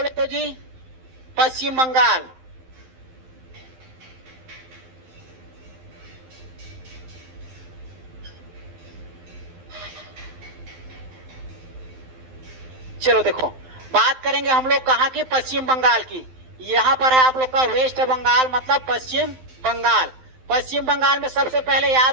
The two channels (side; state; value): left; late; 12 ms